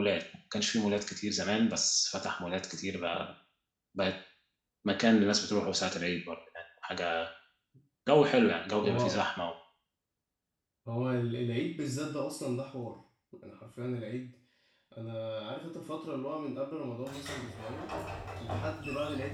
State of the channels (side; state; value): both; identical; correlation 1.00